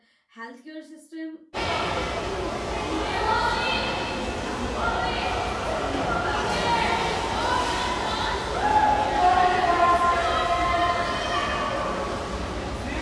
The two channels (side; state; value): both; identical; correlation 1.00